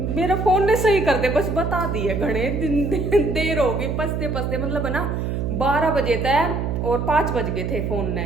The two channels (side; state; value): right; noise; hum, 2 dB below the sound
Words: मेरा फ़ोन ने सही कर दे, बस बता दिए घने दिन देर हो गई, पसते मतलब है ना 12 बजे तक और 5 बज गए थे। फ़ोन ने